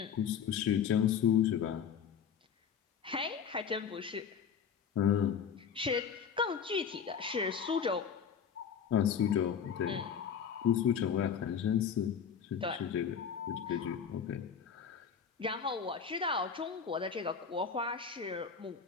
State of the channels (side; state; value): right; quieter; 7.3 dB